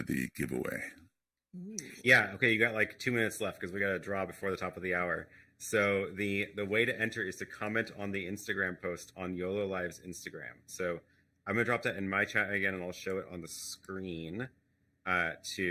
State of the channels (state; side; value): identical; both; correlation 1.00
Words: the giveaway? Ooh. Yeah. Okay. You got like 2 minutes left because we got to draw before the top of the hour. So the way to enter is to comment on the Instagram post on Yololiv's Instagram. So I'm going to drop that in my chat again, and I'll show it on the screen